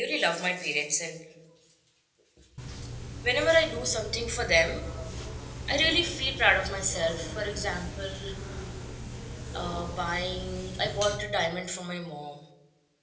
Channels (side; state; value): both; identical; correlation 1.00